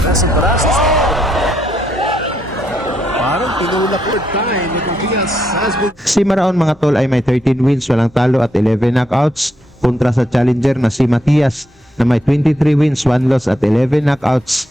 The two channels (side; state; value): both; normal; correlation 0.78